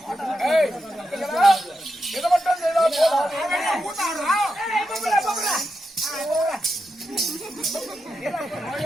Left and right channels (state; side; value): normal; both; correlation 0.87